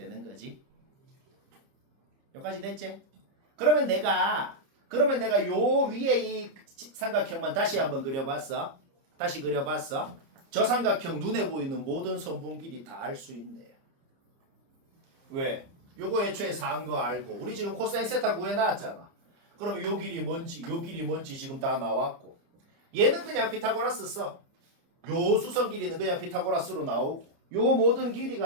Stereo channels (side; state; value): left; late; 30 ms